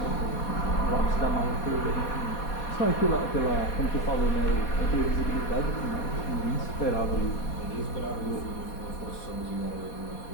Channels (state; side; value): late; right; 4.2 ms